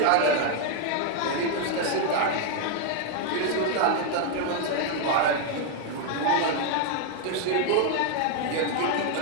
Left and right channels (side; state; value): both; different; correlation 0.00